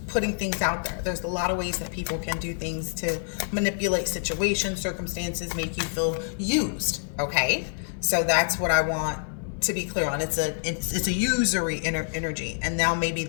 putting things out there. There's a lot of ways that people can do things to manipulate situations, circumstances, make you feel used, okay? So that's what I want to be clear on. It's a usury energy, and now maybe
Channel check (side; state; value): right; silent; 60 dB below the other